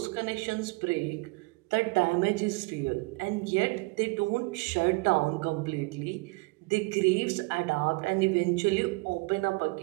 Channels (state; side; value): quieter; left; 26.2 dB